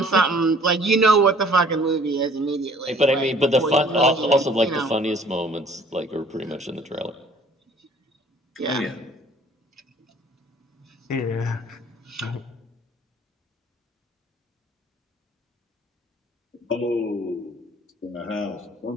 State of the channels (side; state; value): both; normal; correlation 0.54